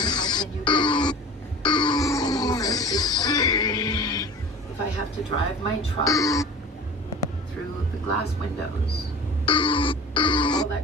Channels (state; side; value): normal; both; correlation 0.38